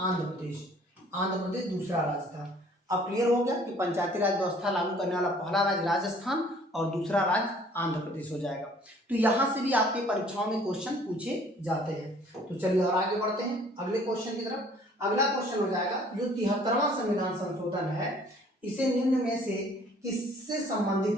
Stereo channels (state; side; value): normal; both; correlation 0.56